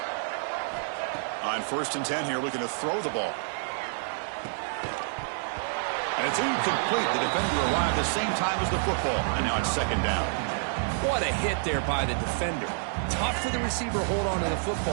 On 1st and 10 here, looking to throw the ball. And it's incomplete. The defender arrived the same time as the football. And now it's 2nd down. What a hit there by the defender. Tough for the receiver to hold on to the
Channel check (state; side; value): silent; left; digital silence